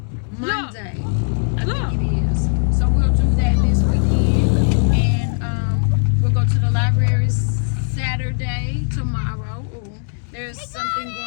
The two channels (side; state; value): right; silent; 66 dB below the other